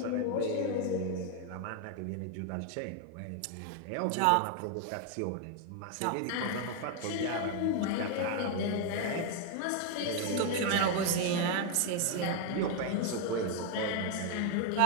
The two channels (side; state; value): both; different; correlation 0.01